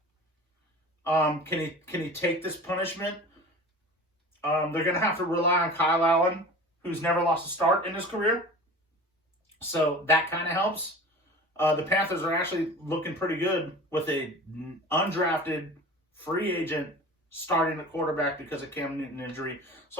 Can he take this punishment? They're going to have to rely on Kyle Allen, who's never lost a start in his career. So that kind of helps. The Panthers are actually looking pretty good with a undrafted free agent starting at quarterback because of Cam Newton injury.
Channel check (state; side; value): normal; both; correlation 0.37